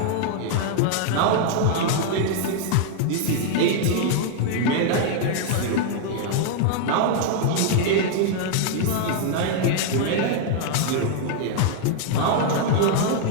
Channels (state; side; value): different; both; correlation 0.00